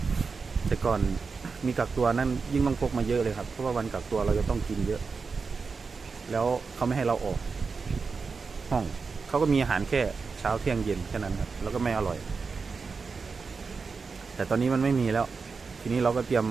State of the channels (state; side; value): quieter; left; 4.8 dB